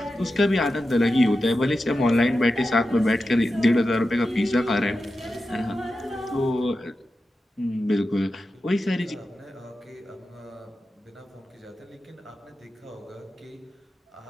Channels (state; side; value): normal; both; correlation 0.91